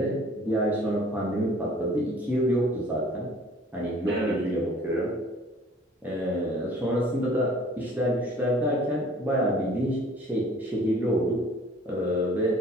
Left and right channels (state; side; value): normal; both; correlation 0.52